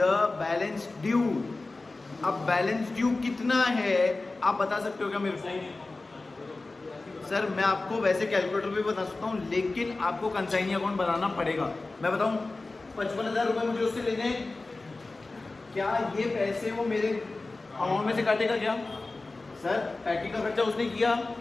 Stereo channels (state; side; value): quieter; right; 3.3 dB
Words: balance due. अब बैलेंस ड्यू कितना है आप बता सकते हो क्या मेरे को? सर मैं आपको वैसे कैलकुलेटर पे बता सकता हूँ, लेकिन आपको कंसाइनी अकाउंट बनाना पड़ेगा। मैं बताऊँ, 55,000 रुपये मुझे उससे लेने, क्या ये पैसे वो मेरे अमाउंट में से काटेगा क्या? सर पैकिंग का खर्चा उसने किया,